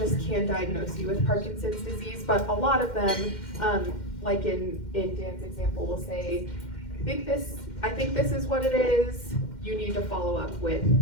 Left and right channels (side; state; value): right; late; 2.1 ms